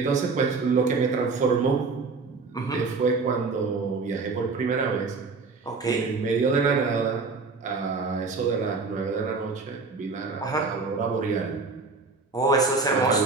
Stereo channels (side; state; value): left; quieter; 4.3 dB